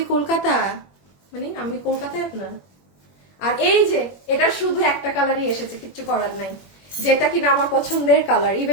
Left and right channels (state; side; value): late; right; 21 ms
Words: কলকাতা, মানে আমি কলকাতায় আপনার। আর এই যে এটা শুধু একটা কালারই এসেছে, কিচ্ছু করার নাই, যেটা কিনা আমার পছন্দের কালার।